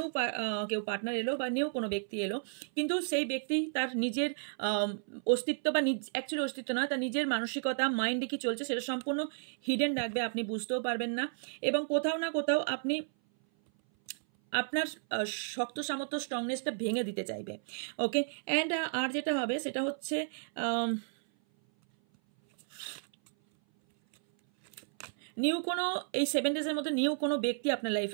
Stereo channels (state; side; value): silent; left; 56 dB below the other